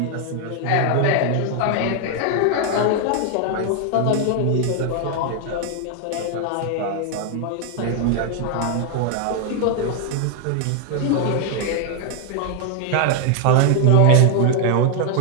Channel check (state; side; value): different; both; correlation 0.00